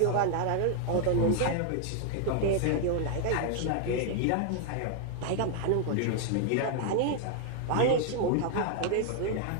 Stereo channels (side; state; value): both; different; correlation 0.00